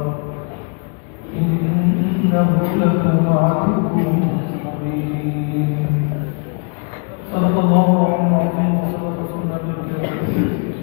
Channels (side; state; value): right; quieter; 38.3 dB